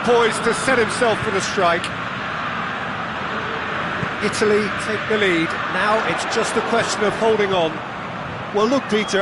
poise to set himself for the strike. Italy take the lead. Now it's just a question of holding on. Well, look,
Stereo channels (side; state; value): both; identical; correlation 1.00